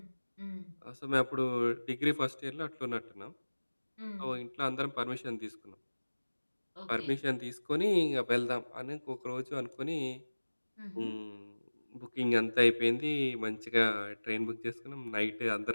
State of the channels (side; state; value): both; inverted; correlation -1.00